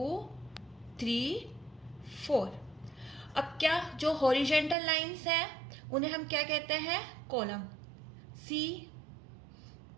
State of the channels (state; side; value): drops out; left; at 4.8 s